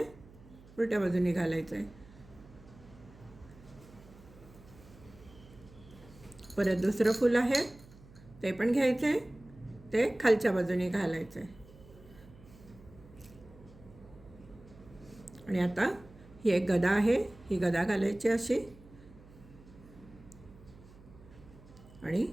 उलट्या बाजूने घालायचं आहे. परत दुसरं फूल आहे ते पण घ्यायचं आहे, ते खालच्या बाजूने घालायचं आहे. आणि आता ही एक गदा आहे, ही गदा घालायची अशी आणि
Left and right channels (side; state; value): right; noise; hum, 21 dB below the sound